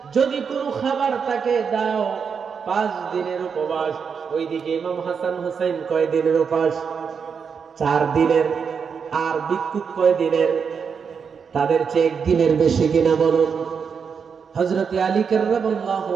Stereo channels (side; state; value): left; quieter; 6.3 dB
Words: যদি কোনো খাবার তাকে দাও। 5 দিনের উপবাস। ওইদিকে ইমাম হাসান হুসাইন কয় দিনের উপবাস? 4 দিনের। আর ভিক্ষুক কয় দিনের? তাদের চেয়ে 1 দিনের বেশি কিনা বলুন? হযরত আলী কাররামাল্লাহু